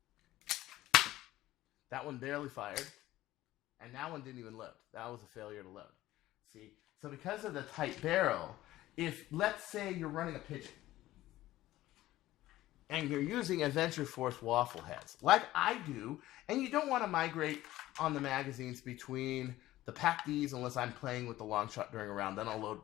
That one barely fired. And that one didn't even load. That was a failure to load. See? So because of the tight barrel, if, let's say you're running a pigeon, and you're using Adventure Force waffle heads, like I do, and you don't want to migrate on the magazines between the Pack Ds unless I'm playing with the long shot during a round. Then I'll load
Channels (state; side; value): quieter; right; 15.7 dB